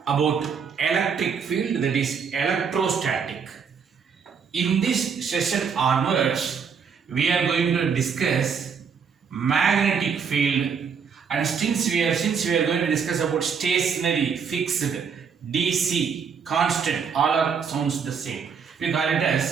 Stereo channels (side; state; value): left; quieter; 6.4 dB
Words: about electric field, that is electrostatic. In this session onwards, we are going to discuss magnetic field, and since we are going to discuss about stationary, fixed, DC, constant, all are sounds the same. We call it